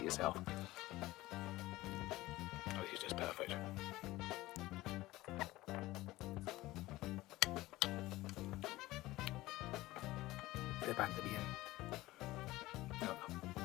yourself. Oh, this is just perfect. They're back to the end. No,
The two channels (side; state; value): right; quieter; 18.0 dB